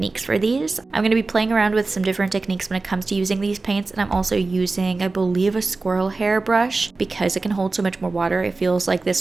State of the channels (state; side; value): quieter; left; 3.6 dB